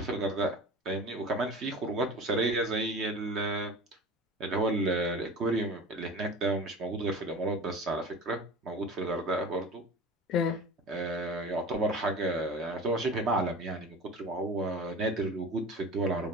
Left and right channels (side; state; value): both; normal; correlation 0.35